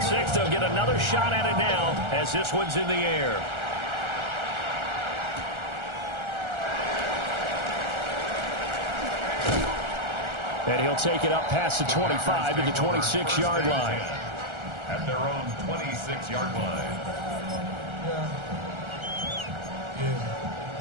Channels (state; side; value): late; left; 1.4 ms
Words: six. They'll get another shot at it now as this one's in the air. And he'll take it up past the 25 to the 26-yard line. At their own 26-yard line.